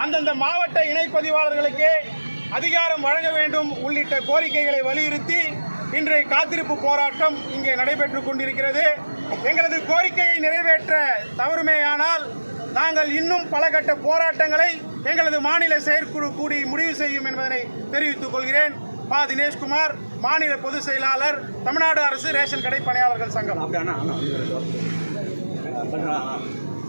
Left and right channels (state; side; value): inverted; both; correlation -1.00